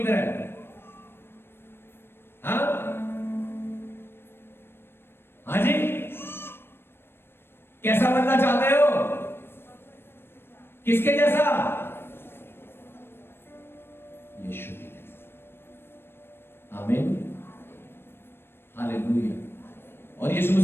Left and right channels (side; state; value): right; late; 0.11 ms